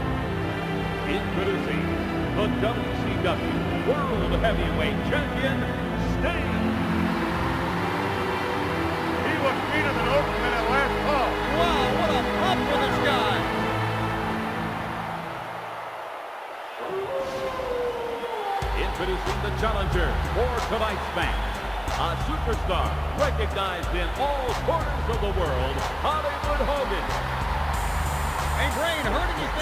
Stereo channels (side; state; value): both; identical; correlation 1.00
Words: Introducing the WCW World Heavyweight Champion, Sting. He was beaten an Oakman at last call. Wow, what a pump for this guy. Introducing the challenger for tonight's match. A superstar recognized in all corners of the world, Hollywood Hogan. Hey, Brain, heard